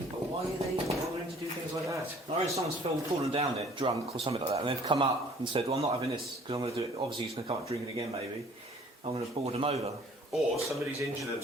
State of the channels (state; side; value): normal; both; correlation 0.54